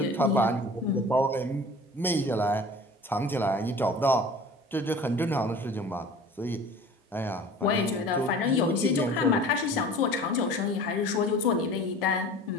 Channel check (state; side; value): normal; both; correlation 0.42